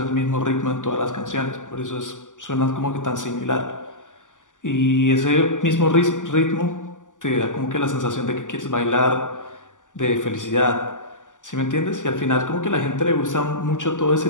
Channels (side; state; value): right; late; 0.87 ms